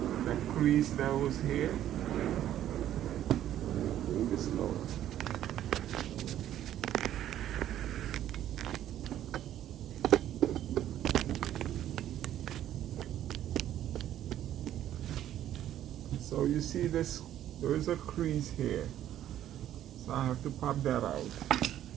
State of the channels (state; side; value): quieter; left; 11.8 dB